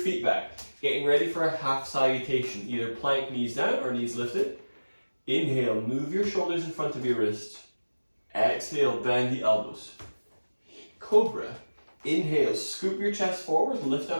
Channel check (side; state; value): both; inverted; correlation -1.00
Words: back. Getting ready for a half salutation. Either plank, knees down or knees lifted. Inhale, move your shoulders in front of your wrists. Exhale, bend the elbows. Cobra. Inhale, scoop your chest forward, lift